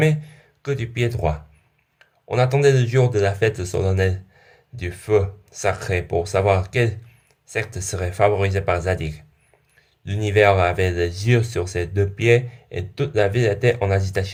que du pied droit. On attendait le jour de la fête solennelle du feu sacré pour savoir quelle secte serait favorisée par Zadig. L'univers avait les yeux sur ses deux pieds et toute la ville était en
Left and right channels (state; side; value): identical; both; correlation 1.00